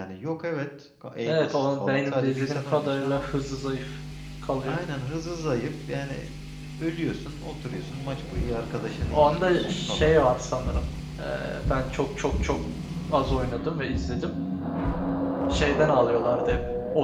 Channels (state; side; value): identical; both; correlation 1.00